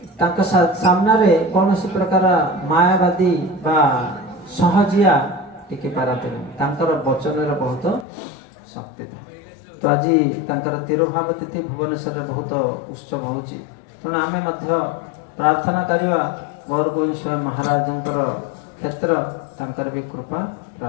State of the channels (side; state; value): right; drops out; at 8.1 s